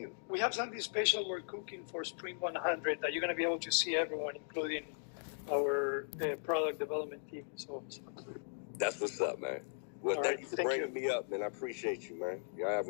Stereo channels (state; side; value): silent; right; digital silence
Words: We have something special we're cooking for Spring 100 that you're going to be able to see everyone, including our product development team. So that's what's up, man. Well, all thank right, you for thank bringing you. me up, man. I appreciate you, man. Y'all have